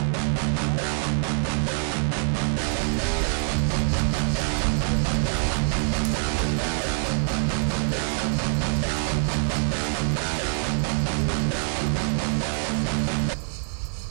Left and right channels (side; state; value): left; silent; 62 dB below the other